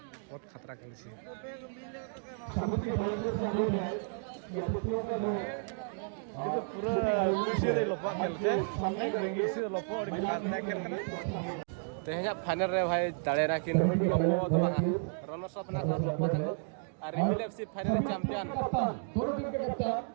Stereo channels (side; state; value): left; silent; digital silence